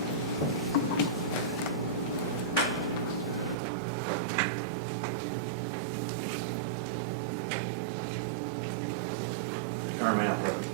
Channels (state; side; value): drops out; left; at 3.6 s